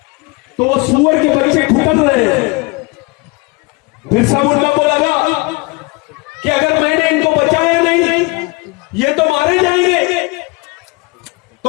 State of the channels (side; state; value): right; quieter; 26.2 dB